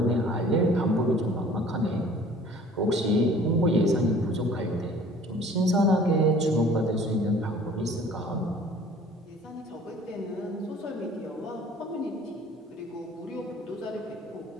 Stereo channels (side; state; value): both; normal; correlation 0.50